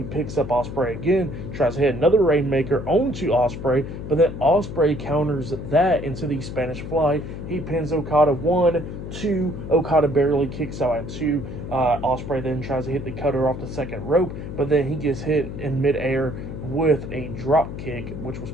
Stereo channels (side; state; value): left; noise; hum, 8 dB below the sound